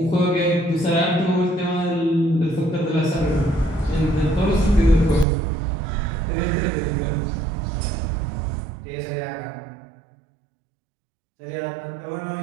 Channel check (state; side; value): drops out; left; at 5.2 s